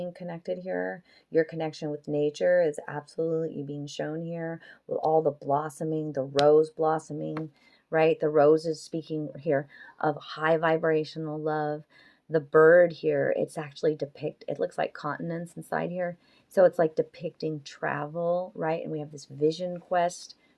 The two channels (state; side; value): identical; both; correlation 1.00